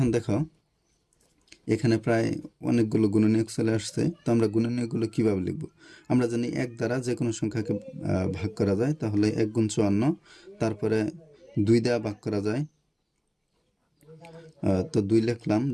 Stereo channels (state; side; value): identical; both; correlation 1.00